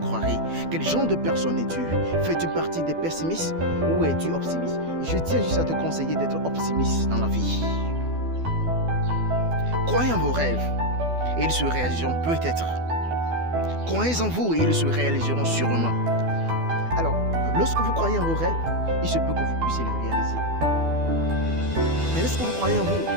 ». Quel genre de personne es-tu? Fais-tu partie des pessimistes ou es-tu optimiste? Je tiens juste à te conseiller d'être optimiste dans la vie. Croyez en vos rêves et ils se réaliseront peut-être. Croyez en vous et ils se réaliseront sûrement. Alors, lorsque vous croyez en vos rêves, il se peut que vous puissiez les réaliser. Mais lorsque vous croyez en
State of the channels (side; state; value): left; late; 12 ms